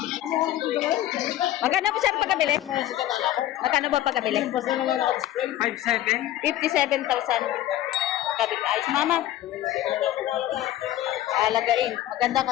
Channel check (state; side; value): quieter; right; 13.7 dB